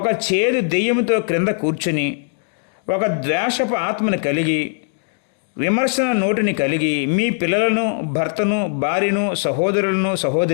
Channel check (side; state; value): right; silent; digital silence